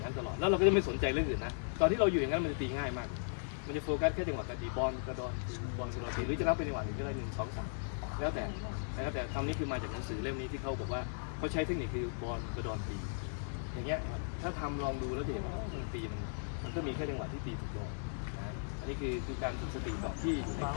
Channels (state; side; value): silent; right; digital silence